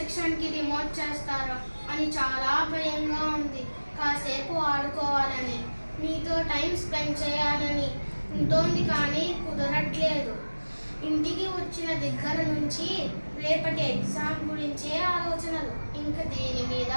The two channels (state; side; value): inverted; both; correlation -1.00